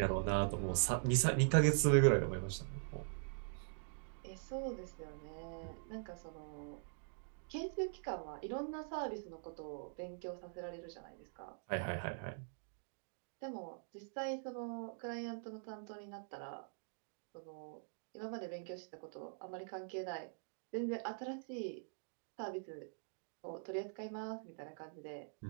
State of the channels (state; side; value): silent; left; digital silence